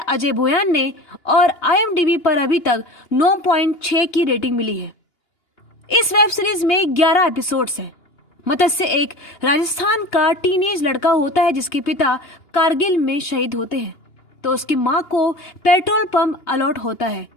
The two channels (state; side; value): late; right; 2.9 ms